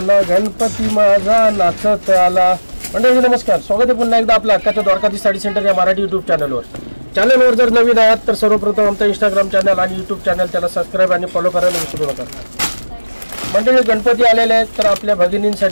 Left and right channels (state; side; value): inverted; both; correlation -1.00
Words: गणपती माझा नाचत आला. मंडळी नमस्कार, स्वागत आहे पुन्हा एकदा आपल्या हक्काच्या द्वारकाधीश साडी सेंटर या मराठी युट्यूब चॅनलवर जर नवीन आहात तर सर्वप्रथम आमचा इंस्टाग्राम चॅनल आणि यूट्यूब चॅनल त्याला सबस्क्राईब आणि फॉलो करायला विसरू नका. मंडळी गणपती आलेले आहेत, तर आपल्या